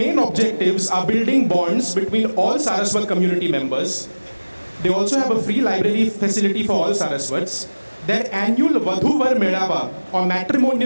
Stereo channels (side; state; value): both; inverted; correlation -1.00